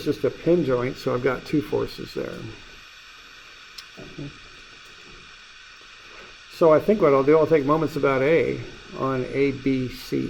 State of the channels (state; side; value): identical; both; correlation 1.00